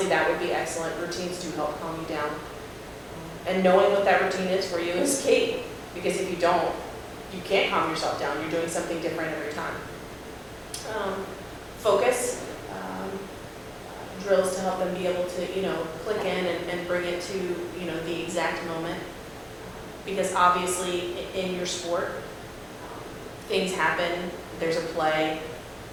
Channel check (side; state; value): both; identical; correlation 1.00